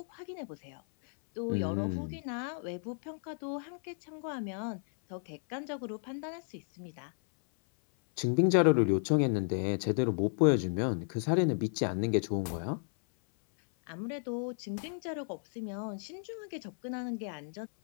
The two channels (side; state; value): right; silent; 56 dB below the other